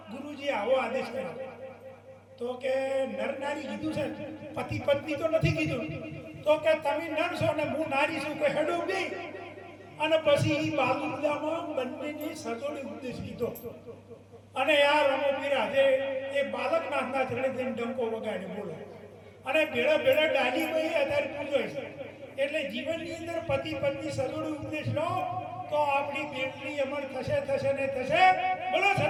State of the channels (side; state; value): both; identical; correlation 1.00